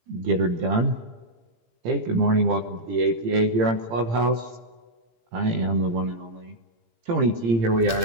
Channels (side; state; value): left; late; 17 ms